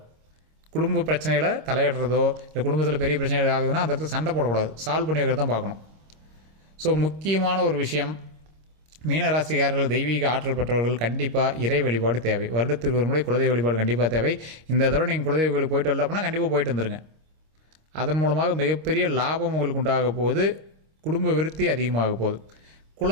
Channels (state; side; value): late; left; 26 ms